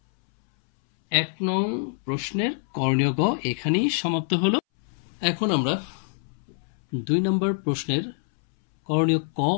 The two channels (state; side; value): silent; right; 62 dB below the other